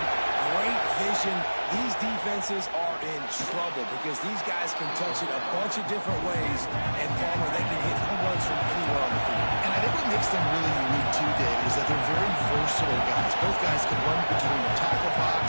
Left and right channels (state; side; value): inverted; both; correlation -1.00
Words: great vision. These defenses are in trouble because these guys can touch it a bunch of different ways, and Palmer, they can hit home runs from anywhere on the field. And I think what makes them really unique too, Dave, is that they're very versatile guys. Both guys can run between the tackle